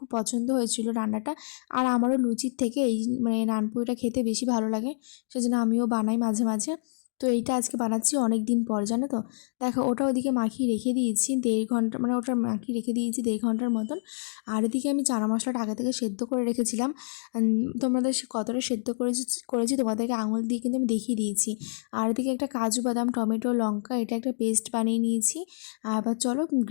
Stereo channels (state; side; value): silent; right; digital silence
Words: পছন্দ হয়েছিল রান্নাটা, আর আমারও লুচির থেকে এই মানে নানপুরিটা খেতে বেশি ভালো লাগে, সেজন্য আমিও বানাই মাঝে মাঝে। তো এইটা আজকে বানাচ্ছি অনেক দিন পর, জানো তো। দেখো ওটা ওদিকে মাখিয়ে রেখে দিয়েছি 1.5 ঘন্টা, মানে ওটা মাখিয়ে রেখে দিয়েছি 1.5 ঘন্টার মতন। আর এদিকে আমি চানা মশলাটা আগে থেকে সেদ্ধ করে রেখেছিলাম। তোমাদের কতটা সেদ্ধ করেছি তোমাদেরকে আঙুল দিয়ে কিন্তু আমি দেখিয়ে দিয়েছি। আর এদিকে একটা কাজু বাদাম টমেটো লঙ্কা এটা একটা পেস্ট বানিয়ে নিয়েছি। আর এবার চলো